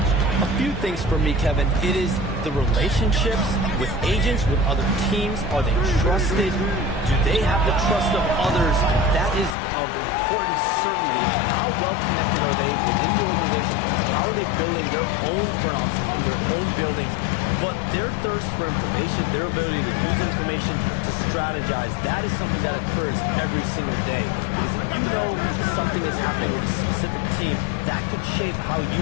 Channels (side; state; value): right; drops out; at 9.6 s